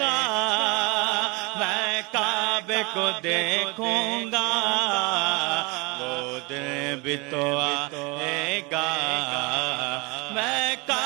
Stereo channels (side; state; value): left; quieter; 26.8 dB